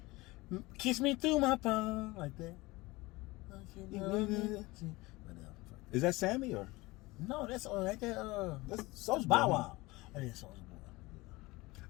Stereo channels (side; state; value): right; quieter; 21.6 dB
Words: Kiss me through my phone. Like that. Whatever. Is that Sammy or? No, that's right there. That's Soulja Bow Boy. Wow. Oh, yeah, Soulja